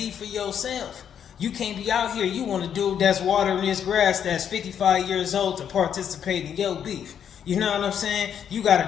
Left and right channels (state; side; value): quieter; right; 8.6 dB